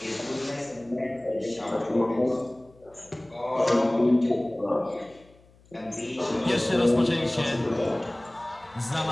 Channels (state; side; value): noise; left; hum, 28 dB below the sound